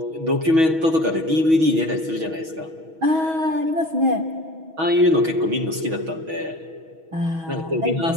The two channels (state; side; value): late; left; 6.2 ms